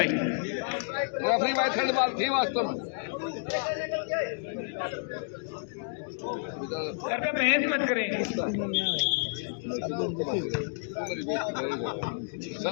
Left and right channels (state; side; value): silent; right; digital silence